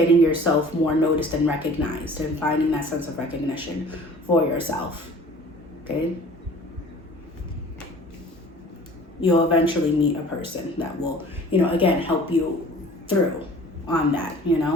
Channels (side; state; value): both; normal; correlation 0.47